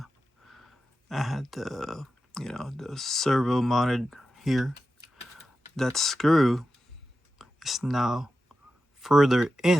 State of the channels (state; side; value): normal; both; correlation 0.91